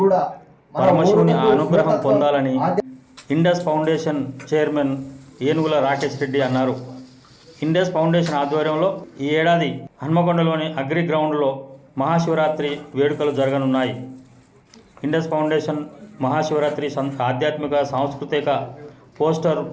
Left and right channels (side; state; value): both; identical; correlation 1.00